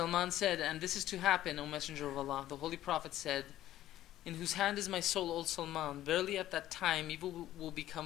said, and this is to happen, O Messenger of Allah. The Holy Prophet said, in whose hand is my soul, O Salman. Verily at that time, evil will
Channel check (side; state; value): right; quieter; 13.6 dB